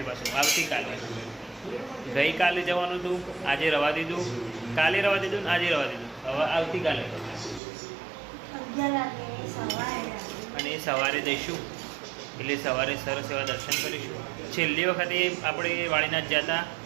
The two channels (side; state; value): left; drops out; at 7.6 s